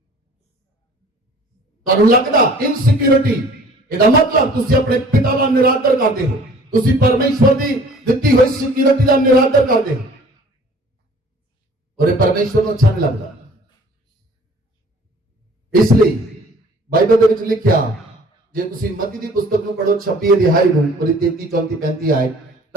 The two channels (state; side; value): normal; both; correlation 0.51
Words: ਤੁਹਾਨੂੰ ਲੱਗਦਾ इनसिक्योरिटी, ਇਹਦਾ मतलब ਤੁਸੀਂ ਆਪਣੇ ਪਿਤਾ ਦਾ ਨਿਰਾਦਰ ਕਰਦੇ ਹੋ, ਤੁਸੀਂ परमेश्वर ਦੀ ਦਿੱਤੀ ਹੋਈ सिक्योरिटी ਦਾ ਨਿਰਾਦਰ ਕਰਦੇ ਹੋ, और ये परमेश्वर ਨੂੰ अच्छा नहीं लगता। इसलिए बाइबल ਦੇ ਵਿੱਚ ਲਿਖਿਆ, ਜੇ ਤੁਸੀਂ ਮਤੀ ਦੀ ਪੁਸਤਕ ਨੂੰ ਪੜੋ 26 ਅਧਿਆਇ ਨੂੰ, ਉਹਦੀ 33, 34, 35 ਆਏ,